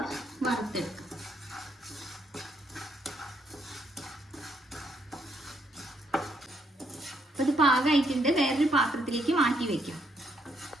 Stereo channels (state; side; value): normal; both; correlation 0.73